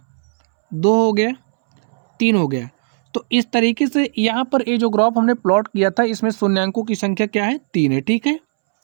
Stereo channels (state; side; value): silent; left; 67 dB below the other